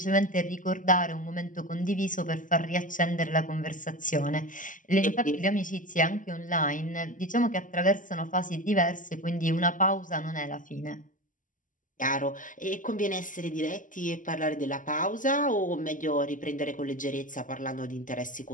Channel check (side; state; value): right; late; 0.38 ms